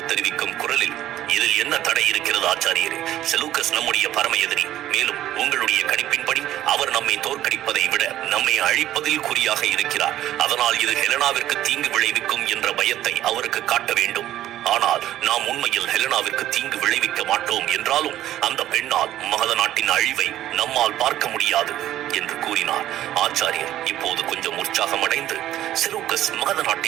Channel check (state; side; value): quieter; left; 13.1 dB